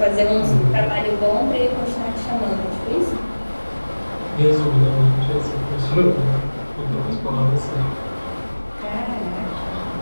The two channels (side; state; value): both; inverted; correlation -1.00